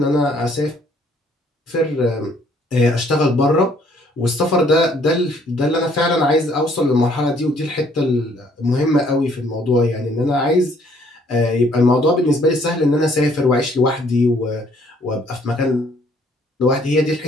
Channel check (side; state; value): both; normal; correlation 0.63